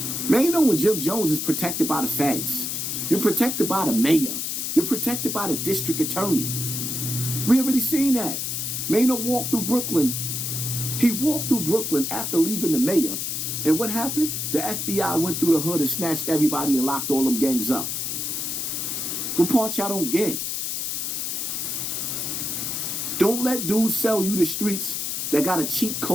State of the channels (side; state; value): left; noise; hiss, 2 dB below the sound